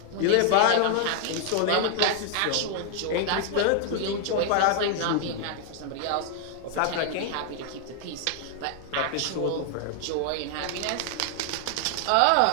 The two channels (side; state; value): both; different; correlation 0.00